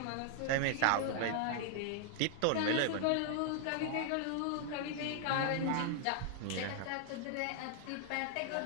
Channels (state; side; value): different; both; correlation 0.00